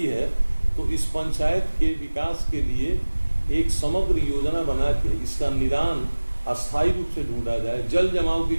है तो इस पंचायत के विकास के लिए एक समग्र योजना बना के इसका निदान अस्थायी रूप से ढूंढा जाए? जल जमाव की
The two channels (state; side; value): inverted; both; correlation -1.00